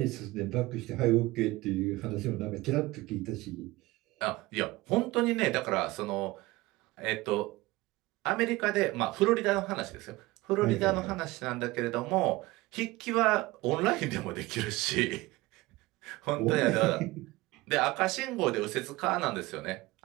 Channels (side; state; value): left; quieter; 20.0 dB